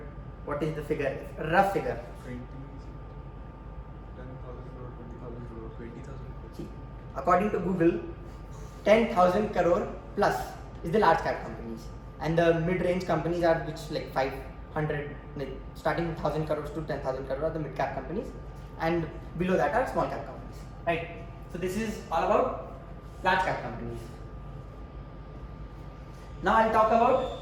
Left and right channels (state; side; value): identical; both; correlation 1.00